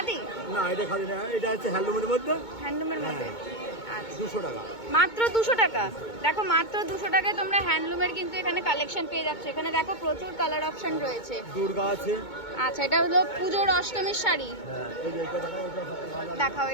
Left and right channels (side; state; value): right; late; 2.2 ms